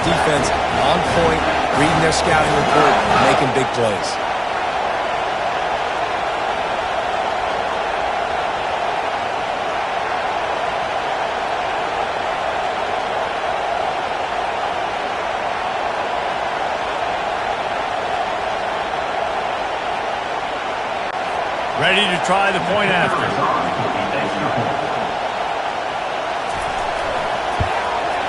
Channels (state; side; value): identical; both; correlation 1.00